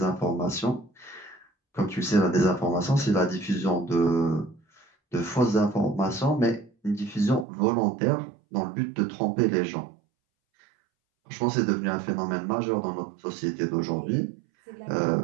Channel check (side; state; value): left; drops out; at 7.5 s